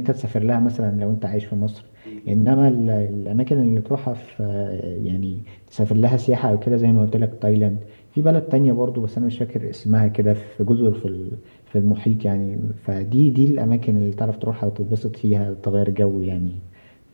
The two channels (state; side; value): inverted; both; correlation -1.00